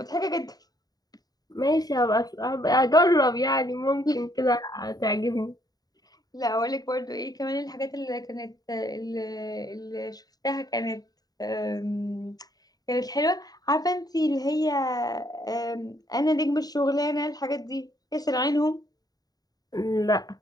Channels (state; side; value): late; right; 0.18 ms